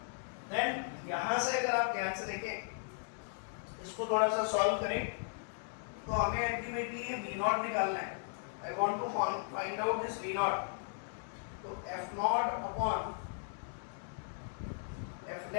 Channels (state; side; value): silent; right; digital silence